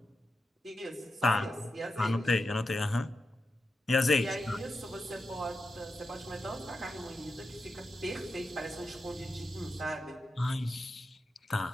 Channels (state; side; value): normal; both; correlation 0.88